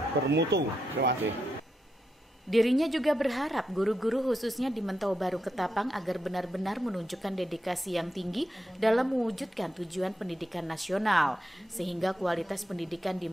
bermutu. Terima kasih. Dirinya juga berharap guru-guru khususnya di Mentawa Baru Ketapang agar benar-benar menunjukkan dedikasi yang tinggi dalam mewujudkan tujuan pendidikan nasional, sehingga kualitas pendidikan di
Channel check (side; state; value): both; normal; correlation 0.85